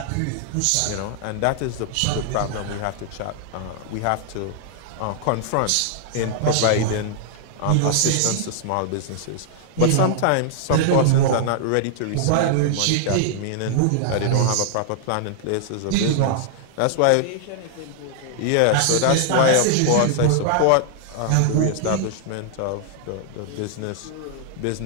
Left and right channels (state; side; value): different; both; correlation -0.01